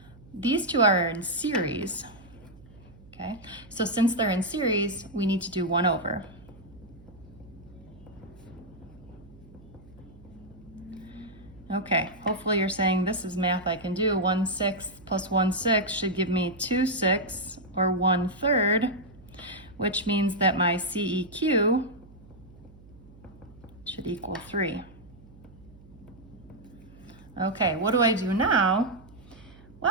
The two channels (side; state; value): right; noise; hum, 22 dB below the sound